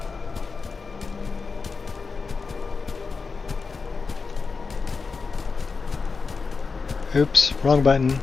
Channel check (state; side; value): quieter; right; 4.7 dB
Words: Oops, wrong button.